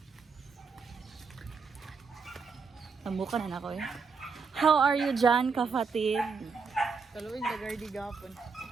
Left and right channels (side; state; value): left; quieter; 5.1 dB